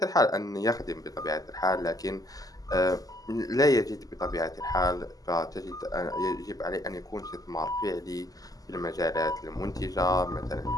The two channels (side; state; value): right; late; 0.17 ms